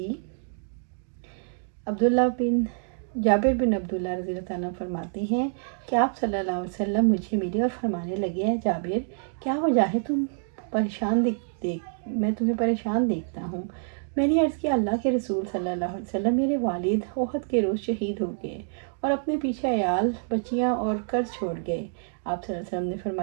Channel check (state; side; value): silent; left; digital silence